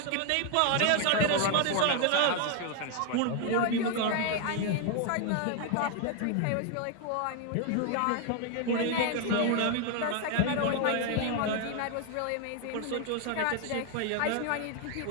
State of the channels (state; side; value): different; both; correlation 0.00